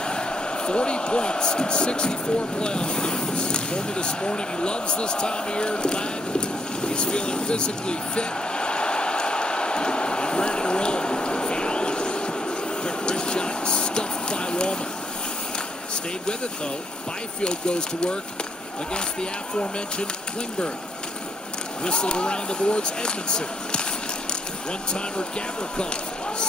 40 points in 64 playoff games. He told me this morning he loves this time of year. Glad he's feeling physically fit and ready to roll. Fiala. Quick wrist shot stuffed by Wallman. Stayed with it though. Byfield goes to work against the aforementioned Klingberg. Whistled around the boards. Edmondson. One-timer Gavrikov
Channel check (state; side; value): normal; both; correlation 0.73